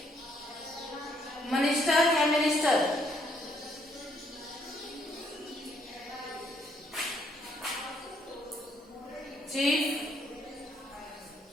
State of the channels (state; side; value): normal; both; correlation 0.70